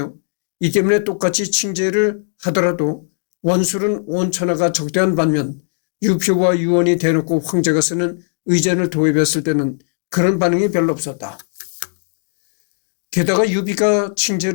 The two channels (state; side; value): silent; right; digital silence